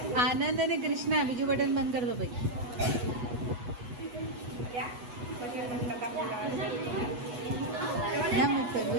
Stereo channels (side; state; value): left; late; 8.2 ms